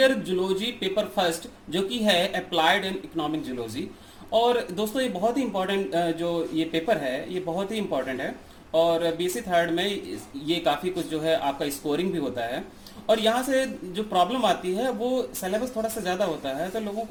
zoology paper first जो कि है अप्लाइड एंड इकोनॉमिक जूलॉजी। और दोस्तों ये बहुत ही इंपॉर्टेंट जो ये पेपर है ये बहुत ही इंपॉर्टेंट है। और बीएससी थर्ड में ये काफ़ी कुछ जो है आपका स्कोरिंग भी होता है। और यहाँ से जो प्रॉब्लम आती है वो सिलेबस थोड़ा सा ज़्यादा होता है, तो लोगों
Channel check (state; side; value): identical; both; correlation 1.00